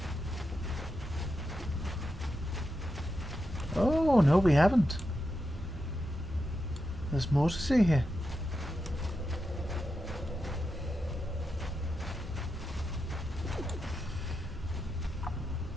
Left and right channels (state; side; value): normal; both; correlation 0.87